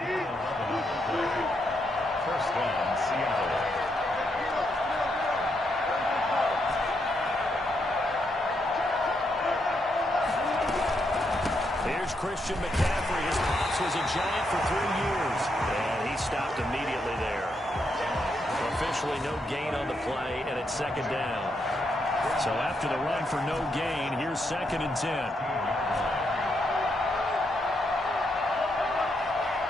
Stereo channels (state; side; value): normal; both; correlation 0.79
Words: First down, Seattle. Here's Christian McCaffrey. His pops was a Giant for 3 years. And he stopped immediately there. Officially no gain on the play, and it's second down. So after the run for no gain, here's 2nd and 10.